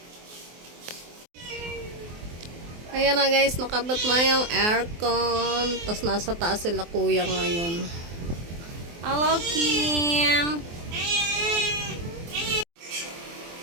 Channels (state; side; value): late; left; 24 ms